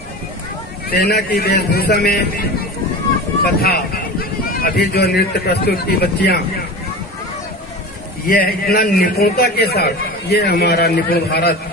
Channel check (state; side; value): normal; both; correlation 0.31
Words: सेना की वेशभूषा में तथा अभी जो नृत्य प्रस्तुत की बच्चियां, यह इतना निपुणता के साथ, ये हमारा निपुण भारत